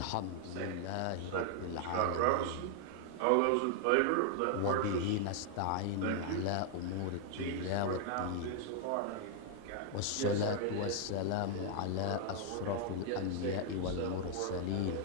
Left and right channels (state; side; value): different; both; correlation 0.00